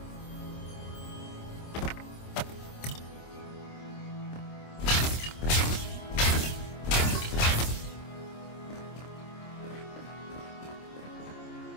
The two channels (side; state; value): right; late; 26 ms